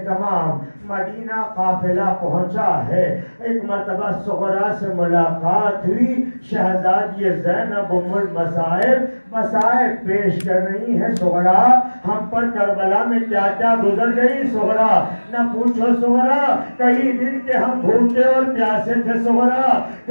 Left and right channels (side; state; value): both; inverted; correlation -1.00